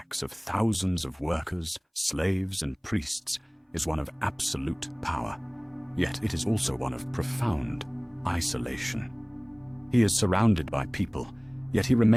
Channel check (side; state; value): both; identical; correlation 1.00